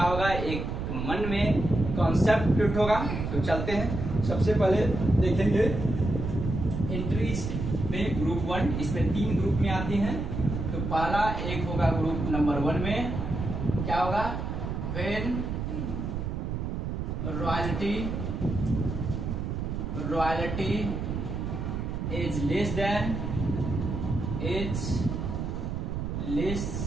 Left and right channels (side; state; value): right; noise; rumble, 3 dB below the sound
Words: होगा, एक मन में कॉन्सेप्ट फिट होगा। तो चलते हैं। सबसे पहले देखेंगे एंट्रीज में ग्रुप 1, इसमें 3 ग्रुप में आती हैं। तो पहला एक होगा ग्रुप नंबर 1 में क्या होगा, when royalty is less than